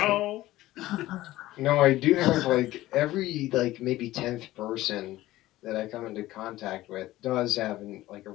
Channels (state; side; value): quieter; right; 16.4 dB